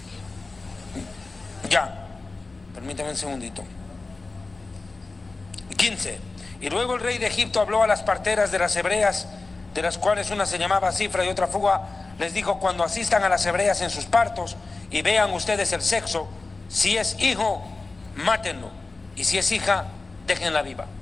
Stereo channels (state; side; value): quieter; right; 3.6 dB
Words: Ya. Permítame un segundito. 15. Y luego el rey de Egipto habló a las parteras de las hebreas, de las cuales una se llamaba Cifra y otra Fuga. Les dijo: cuando asistan a las hebreas en sus partos y vean ustedes el sexo, si es hijo, mátenlo, y si es hija, déjenla viva.